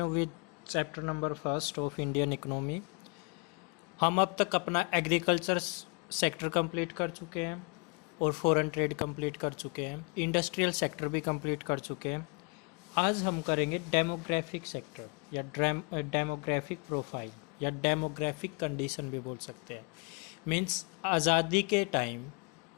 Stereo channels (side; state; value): right; quieter; 33.0 dB